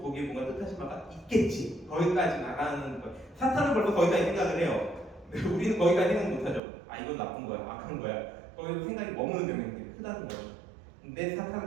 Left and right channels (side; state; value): left; drops out; at 6.6 s